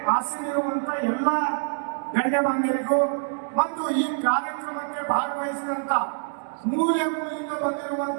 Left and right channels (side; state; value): left; silent; digital silence